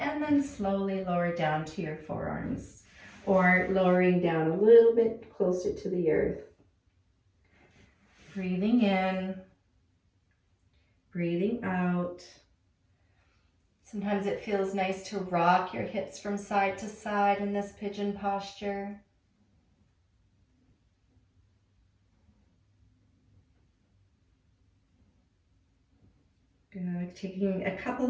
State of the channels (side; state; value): both; identical; correlation 1.00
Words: then slowly lower down to your forearms, or lowering down a little bit closer to the earth. Breathing in, breathing out. Sometimes it feels nice to rock your hips from side to side in this pigeon posture. Good. Taking a couple